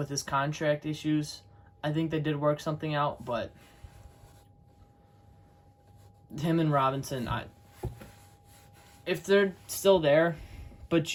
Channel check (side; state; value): both; identical; correlation 1.00